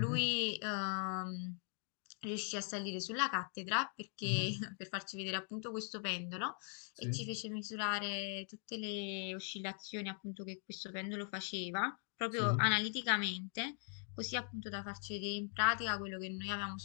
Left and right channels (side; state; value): right; silent; 50 dB below the other